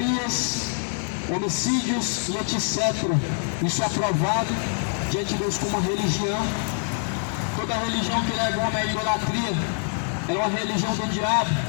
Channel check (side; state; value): right; silent; 57 dB below the other